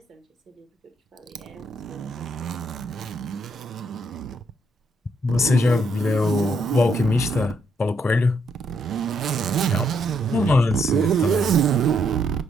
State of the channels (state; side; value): normal; both; correlation 0.74